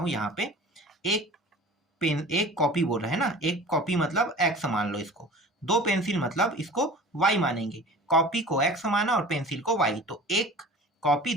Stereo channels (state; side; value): normal; both; correlation 0.41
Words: यहाँ पे एक कॉपी बोल रहे हैं ना, एक कॉपी मतलब x मान लो इसको, दो पेंसिल मतलब इसको y मानेंगे, कॉपी को x माना और पेंसिल को y, तो एक कॉपी